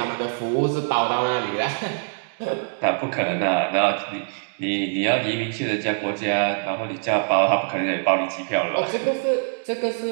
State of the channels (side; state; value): left; silent; digital silence